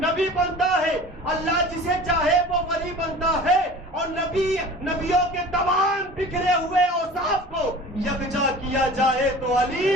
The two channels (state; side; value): normal; both; correlation 0.41